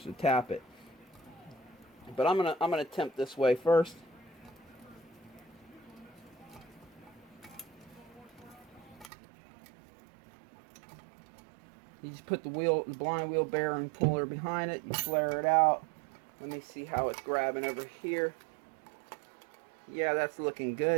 to tap it. But I'm gonna attempt this way first. You just put the blind wheel bearing puller behind it. You flare it out. Let me see how it's grabbing over here. Yeah, that's looking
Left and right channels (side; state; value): left; drops out; at 9.1 s